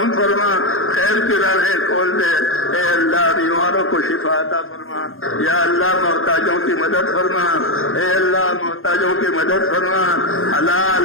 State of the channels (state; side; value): late; right; 0.60 ms